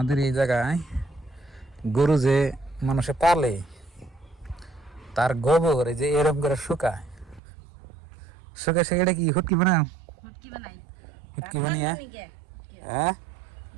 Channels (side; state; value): left; drops out; at 7.4 s